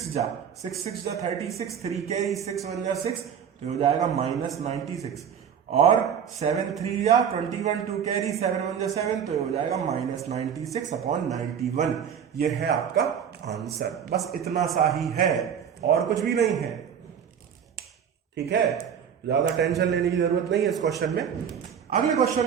जा 36, 3 कैरी 6 1 जा 6, तो हो जाएगा -96, और 7 3 जा 21, 2 कैरी 7 1 जा 7, तो हो जाएगा -96/91। ये है आपका आंसर। बस इतना सा ही है और कुछ भी नहीं है। ठीक है, ज्यादा टेंशन लेने की जरूरत नहीं है इस क्वेश्चन में। अगले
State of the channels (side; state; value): left; quieter; 8.0 dB